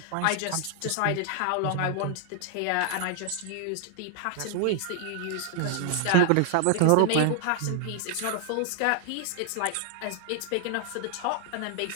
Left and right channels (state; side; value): different; both; correlation 0.00